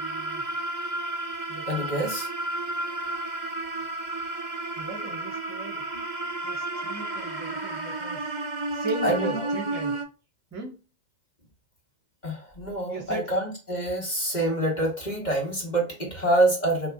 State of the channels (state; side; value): late; right; 2.1 ms